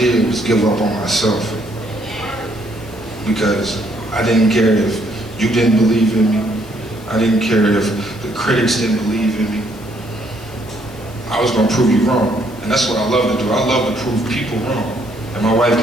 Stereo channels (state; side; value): noise; left; hiss, 23 dB below the sound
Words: was give up on myself. Because I didn't care if you didn't believe in me. I didn't care if the critics didn't believe in me. I was gonna prove you wrong. And that's what I love to do. I love to prove people wrong. And my wife